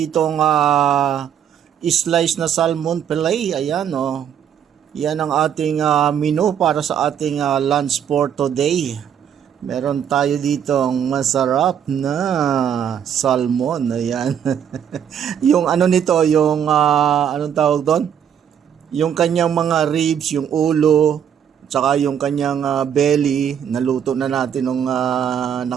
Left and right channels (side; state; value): left; quieter; 8.8 dB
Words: slice na salmon fillet. Ayan yan ang ating menu para sa ating lunch for today. Meron tayo ditong masarap na salmon. Ayan. Yung ano nito, yung anong tawag doon? Yung kanyang mga ribs, yung ulo, tsaka yung kanyang belly, naluto na natin nung